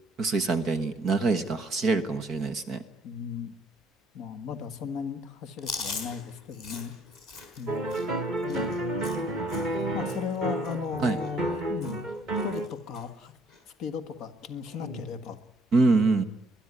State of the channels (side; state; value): both; normal; correlation 0.64